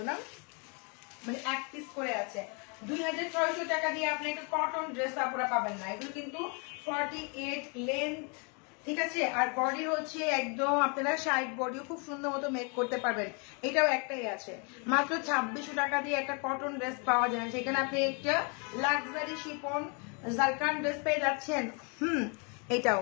না, মানে এক পিস করে আছে। 2600 টাকা দিয়ে আপনি একটা কটন ড্রেস আপনারা পাবেন না। এগুলো কিন্তু 48 লেন্থ, ঠিক আছে। আর বডি হচ্ছে একদম আপনারা সাইড বডিও খুব সুন্দর মতো মেক করতে পারবেন। এটাও একটাই আছে, মাত্র 2600 টাকা দিয়ে একটা কটন ড্রেস পাওয়া যায়। সেখানে আপনি একটা লাক্সারি শিফন জারকান ড্রেস পেয়ে যাচ্ছেন। এটাও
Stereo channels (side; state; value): right; quieter; 34.9 dB